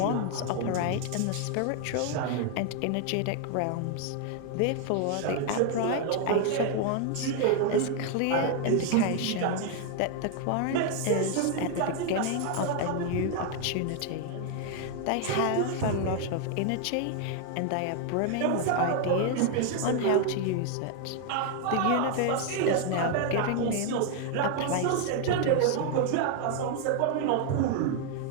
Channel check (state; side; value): different; both; correlation 0.00